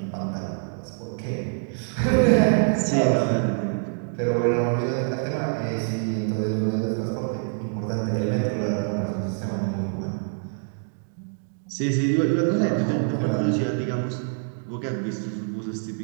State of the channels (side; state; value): left; silent; 62 dB below the other